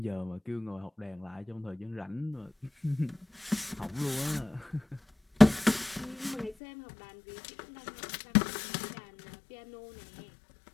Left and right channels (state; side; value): drops out; right; at 6.6 s